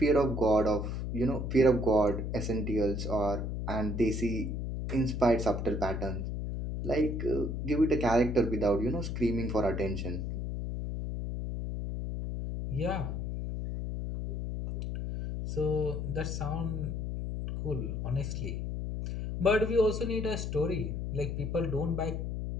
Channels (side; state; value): left; noise; hum, 3 dB below the sound